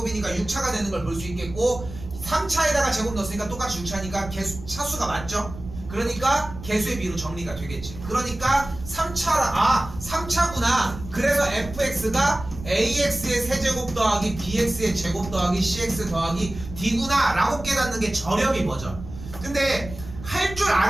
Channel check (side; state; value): right; noise; rumble, 13 dB below the sound